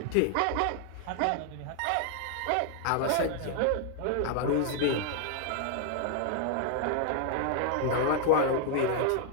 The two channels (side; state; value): both; different; correlation 0.00